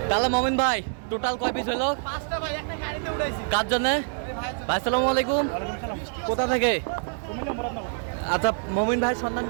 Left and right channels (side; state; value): left; silent; digital silence